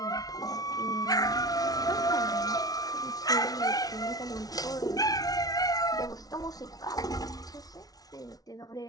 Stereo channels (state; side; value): late; right; 0.18 ms